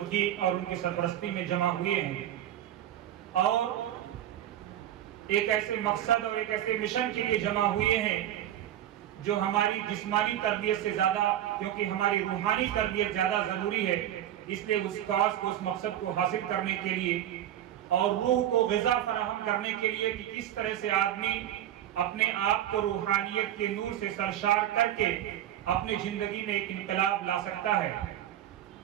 اور ان کی سرپرستی میں جمع ہوئے ہیں، اور ایک ایسے مقصد اور ایک ایسے مشن کے لیے جمع ہوئے ہیں جو ہماری جسمانی تربیت سے زیادہ، کیونکہ ہماری روحانی تربیت زیادہ ضروری ہے، اس لیے اس کاز کو، اس مقصد کو حاصل کرنے کے لیے اور روح کو غذا فراہم کرنے کے لیے کہ کس طرح سے آدمی اپنے آپ کو روحانیت کے نور سے سرشار کر کے اپنی زندگی میں ایک انقلاب لا سکتا ہے.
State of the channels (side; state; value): left; quieter; 11.8 dB